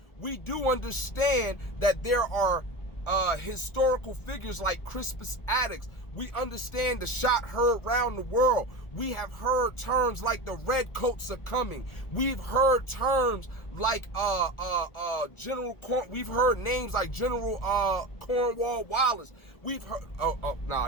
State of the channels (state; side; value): late; right; 1.4 ms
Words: we do understand that there are historical figures like Crispus Attucks. We understand the shot heard around the world. We have heard terms like the redcoats are coming. We've heard terms like we've heard names like General Cornwall Wallace. We've heard